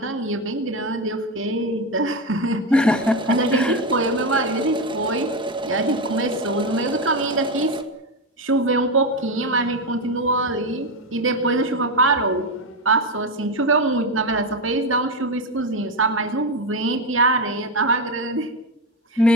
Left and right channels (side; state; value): both; normal; correlation 0.12